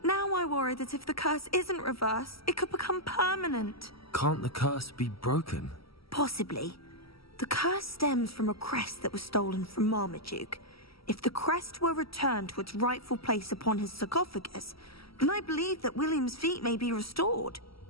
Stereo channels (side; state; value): right; late; 0.75 ms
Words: Now I worry that if the curse isn't reversed, it could become permanent. Can't the curse be broken? Possibly. The curse stems from a crest that was stolen from Marmaduke. If the crest were returned to its rightful place upon his sarcophagus, then I believe that William's feet may be restored.